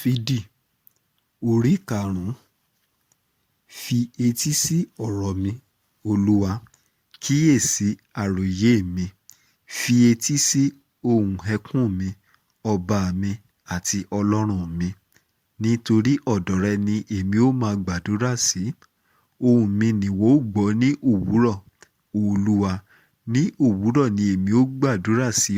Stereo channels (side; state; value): both; identical; correlation 1.00